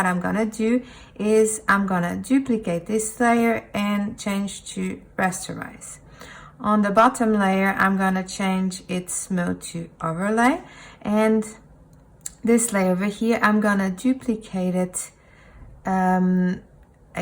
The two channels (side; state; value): both; identical; correlation 1.00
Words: I'm gonna do is I'm gonna duplicate this layer and change to rasterize. On the bottom layer, I'm gonna change its mode to overlay, and this layer over here, I'm gonna duplicate it. I'm